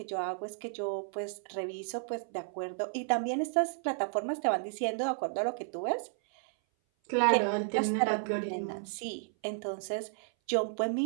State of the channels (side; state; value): left; silent; 56 dB below the other